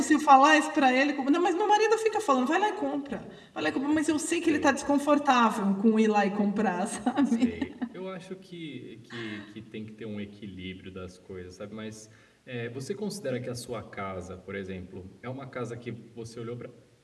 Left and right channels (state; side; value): identical; both; correlation 1.00